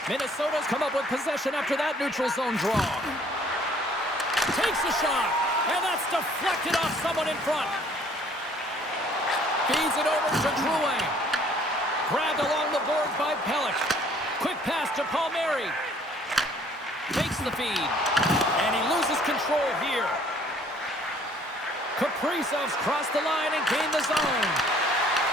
Minnesota's come up with possession after that neutral zone draw. Takes a shot, and that's deflected off someone in front. Feeds it over to Drouin. Grabbed along the boards by Pelech. Quick pass to Palmieri. Takes the feed. And he loses control here. Kaprizov's crossed the line and gained the zone.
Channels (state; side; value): normal; both; correlation 0.58